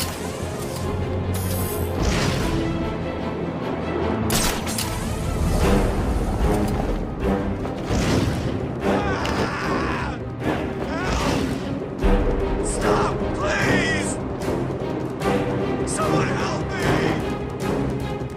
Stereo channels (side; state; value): both; identical; correlation 1.00